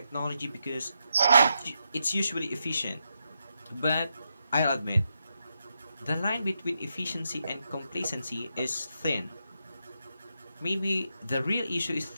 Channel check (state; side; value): inverted; both; correlation -0.84